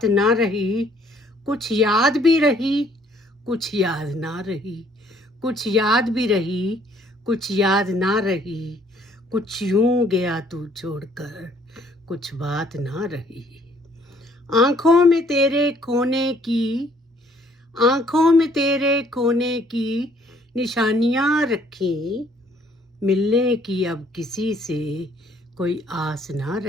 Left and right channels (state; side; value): normal; both; correlation 0.62